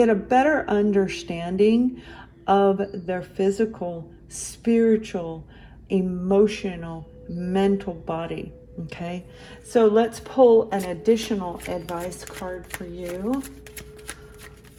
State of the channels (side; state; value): both; identical; correlation 1.00